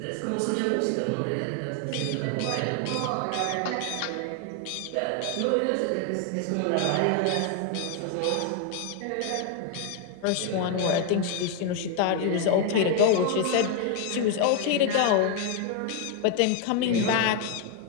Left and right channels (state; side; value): different; both; correlation 0.01